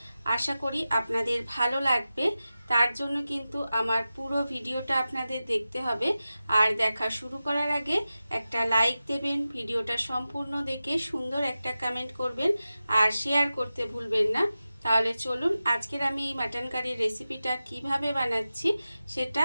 আশা করি আপনাদের ভালো লাগবে। তার জন্য কিন্তু আমার পুরো ভিডিওটা আপনাদের দেখতে হবে। আর দেখা শুরু করার আগে একটা লাইক দেবেন, ভিডিওটা সম্পূর্ণ দেখে সুন্দর একটা কমেন্ট করবেন আর শেয়ার করতে ভুলবেন না। তাহলে চলুন আজকের আমি এই মাটন কারির রেসিপিটা কিভাবে বানাচ্ছি সেটা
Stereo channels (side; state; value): both; inverted; correlation -0.94